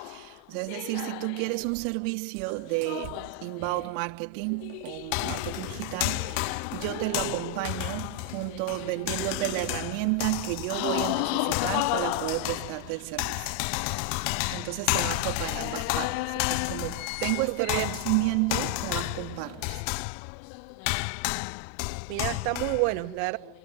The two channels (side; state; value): both; different; correlation 0.00